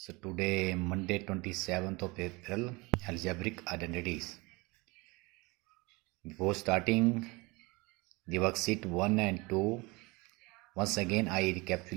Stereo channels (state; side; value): quieter; left; 25.0 dB